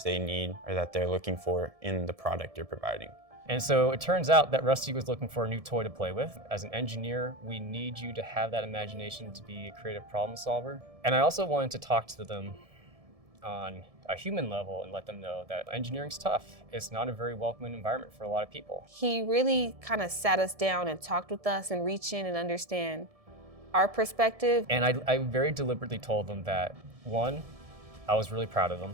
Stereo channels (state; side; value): late; left; 1.7 ms